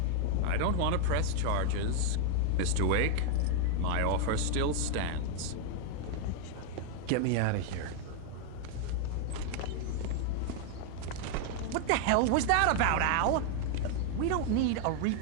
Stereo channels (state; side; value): different; both; correlation 0.00